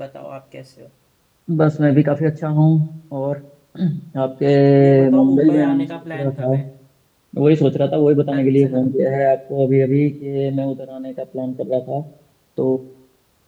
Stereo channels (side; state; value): both; identical; correlation 1.00